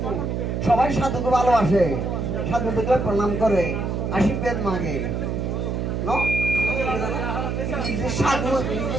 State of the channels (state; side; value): noise; right; hum, 1 dB below the sound